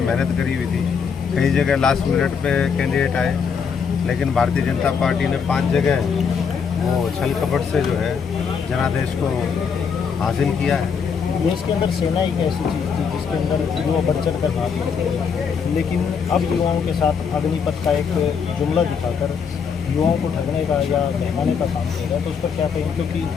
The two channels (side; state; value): right; quieter; 6.3 dB